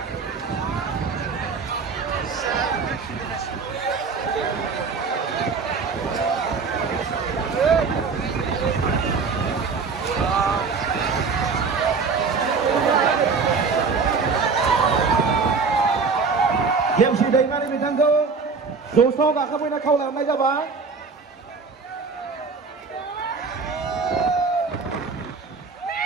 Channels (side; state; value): left; quieter; 4.9 dB